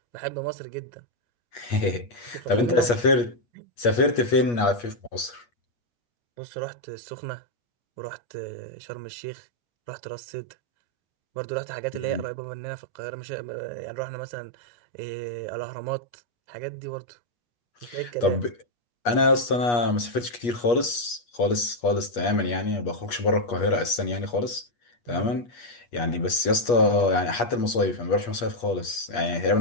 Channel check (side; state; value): right; late; 8.4 ms